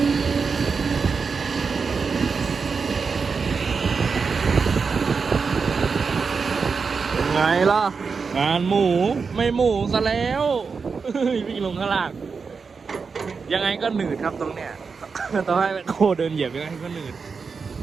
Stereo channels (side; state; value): left; quieter; 5.2 dB